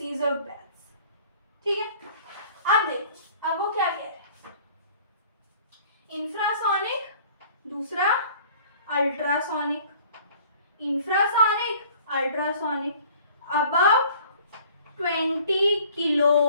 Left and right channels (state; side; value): inverted; both; correlation -0.52